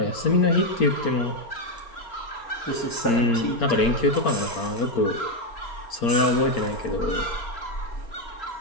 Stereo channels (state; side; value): late; right; 4.4 ms